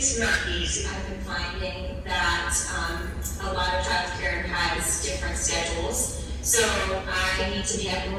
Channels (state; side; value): identical; both; correlation 1.00